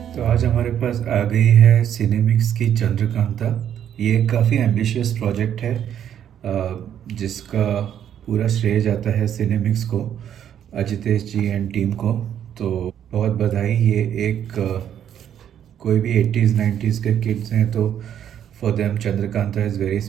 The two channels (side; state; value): left; quieter; 9.7 dB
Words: तो आज हमारे पास आ गई है सिनेमिक्स की चंद्रकांता। ये काफ़ी एम्बिशियस प्रोजेक्ट है जिसका पूरा श्रेय जाता है सिनेमिक्स को, अजितेश जी एंड टीम को। तो बहुत बधाई। ये एक कोई भी 80s 90s के किड्स हैं तो for them Chandrakanta is very